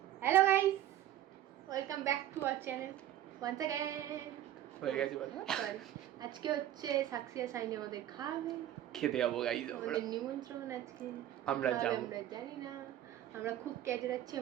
Hello guys, welcome back to our channel once again. হয়ে গেছে বলো। সরি, আজকে হচ্ছে সাক্ষী আর সাইনি আমাদের খাবে, খেতে যাবো গাইস আমরা। আমাদের নিমন্ত্রণ আজকে। আমরা যাব, আমরা জানি না, আমরা খুব ক্যাজে যাচ্ছি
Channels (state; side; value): quieter; left; 12.3 dB